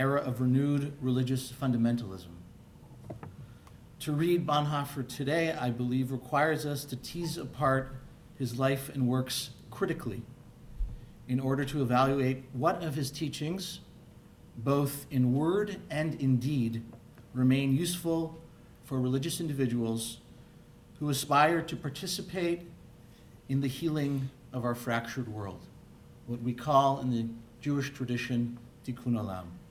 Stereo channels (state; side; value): identical; both; correlation 1.00